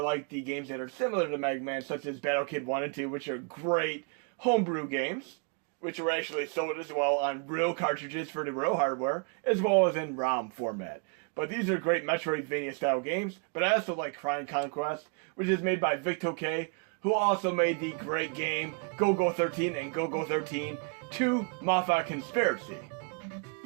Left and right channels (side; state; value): left; quieter; 36.6 dB